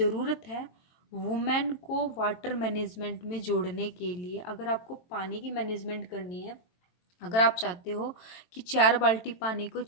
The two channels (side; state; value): right; late; 22 ms